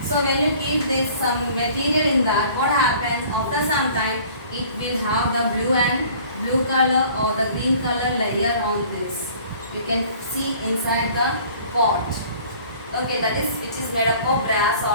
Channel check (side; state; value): both; inverted; correlation -0.51